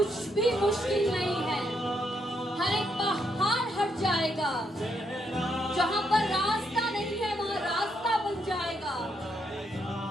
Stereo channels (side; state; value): both; normal; correlation 0.77